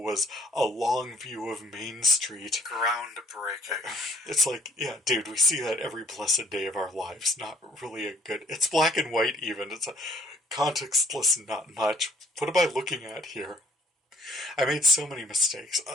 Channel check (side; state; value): both; normal; correlation 0.62